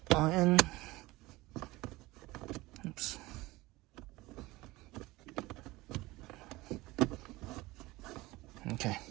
on in. Oops. Okay.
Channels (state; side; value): quieter; left; 20.1 dB